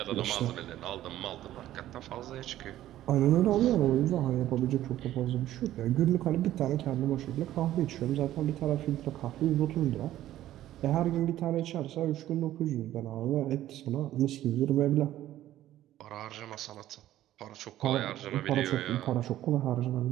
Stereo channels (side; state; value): left; quieter; 13.5 dB